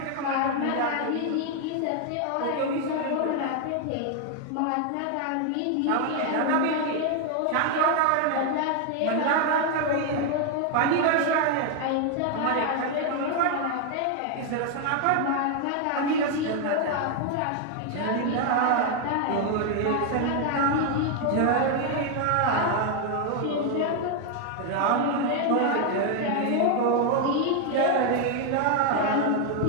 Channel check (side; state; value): both; different; correlation 0.01